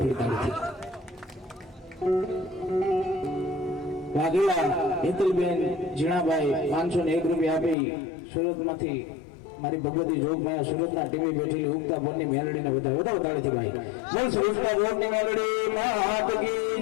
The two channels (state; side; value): drops out; right; at 7.8 s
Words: વાઘેલા હેતલબેન જીણાભાઈ 501 રૂપિયા આપી સુરતમાંથી મારી ભગવતી જોગ માયા સુરતના ટીવી બેઠેલી ઉગતા બોરની મેલડીને વધારે વધારે તાળીથી ભાઈ બોલ સુરતના બોરની મેલડી મે હાથ કી